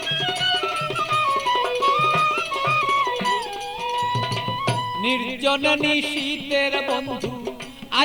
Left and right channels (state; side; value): identical; both; correlation 1.00